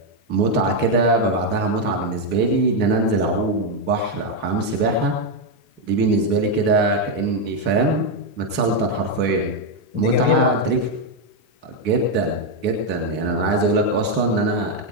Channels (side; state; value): right; late; 3.8 ms